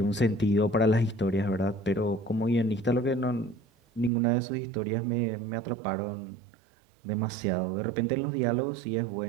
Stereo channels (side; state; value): left; drops out; at 4.1 s